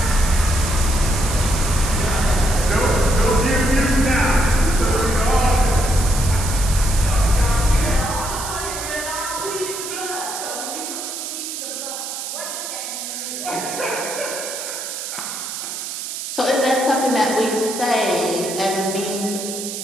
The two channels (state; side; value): noise; right; hiss, 6 dB below the sound